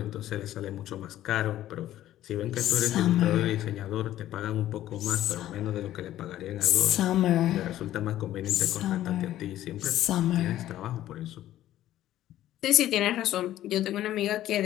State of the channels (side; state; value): right; quieter; 13.3 dB